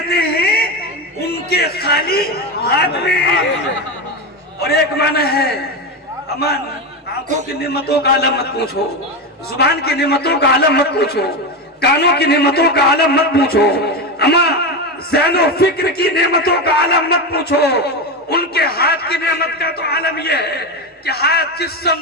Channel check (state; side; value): normal; both; correlation 0.16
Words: ہیں ان کے خالی ہاتھ میں. اور ایک معنی ہے امان آنکھوں کی نعمتوں کا عالم مت پوچھو, زبان کی نعمتوں کا عالم مت پوچھو, کانوں کی نعمتوں کا عالم مت پوچھو, اما ذہن و فکر کی نعمتوں کا عالم مت پوچھو. ان کے ہاتھ کی نعمت کا تو عالم یہ ہے کہ ہاتھ جس